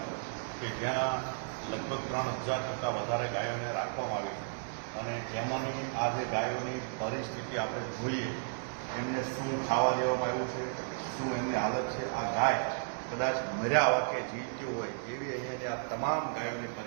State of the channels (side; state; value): left; silent; digital silence